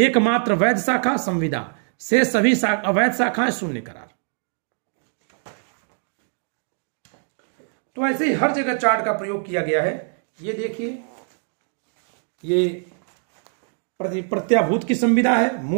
वैध शाखा संविदा, से सभी अवैध शाखाएं शून्य करार। तो ऐसे ही हर जगह चार्ट का प्रयोग किया गया है। ये देखिए, ये प्रत्याभूत की संविदा है,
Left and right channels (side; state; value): left; silent; 55 dB below the other